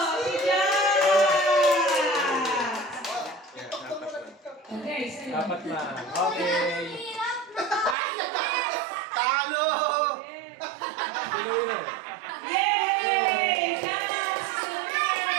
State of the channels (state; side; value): drops out; left; at 8.0 s